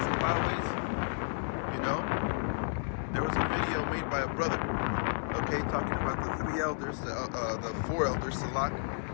and byways. You know? There was a video made by a brother, okay, talking about the 3 elders, the 4 elders, Salak,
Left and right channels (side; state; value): right; silent; digital silence